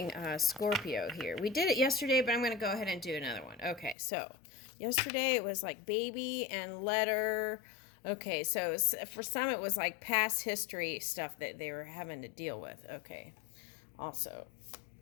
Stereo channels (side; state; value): right; drops out; at 4.0 s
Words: Scorpio here. We did it yesterday, but I'm going to go ahead and do another one. Okay, so yesterday it was like baby and letter. Okay, so for some it was like past history stuff that they were having to deal with. Okay, also,